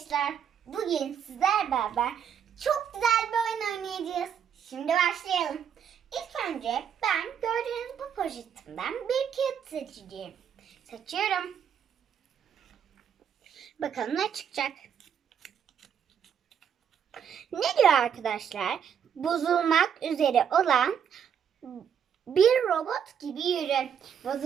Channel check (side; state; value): left; quieter; 8.1 dB